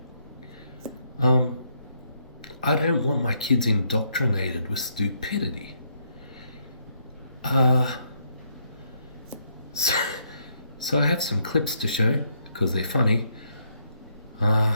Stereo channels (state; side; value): inverted; both; correlation -0.74